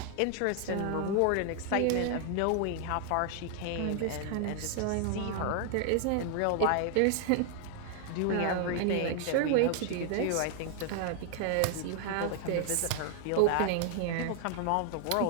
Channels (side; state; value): both; different; correlation 0.00